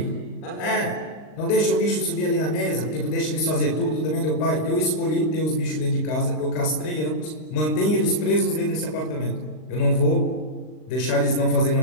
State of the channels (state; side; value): late; right; 39 ms